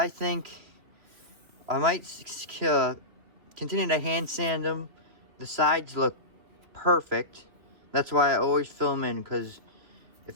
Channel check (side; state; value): left; late; 3.1 ms